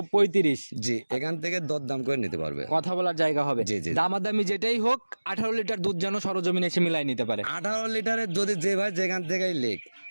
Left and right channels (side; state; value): both; inverted; correlation -1.00